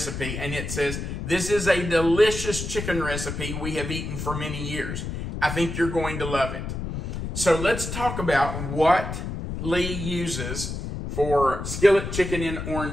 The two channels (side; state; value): left; noise; rumble, 5 dB below the sound